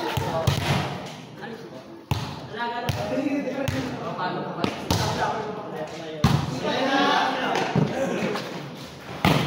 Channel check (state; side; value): identical; both; correlation 1.00